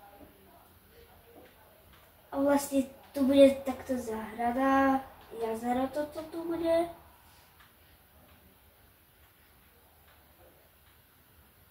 A vlastne tu bude takto záhrada, jazero toto tu bude.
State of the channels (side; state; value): both; identical; correlation 1.00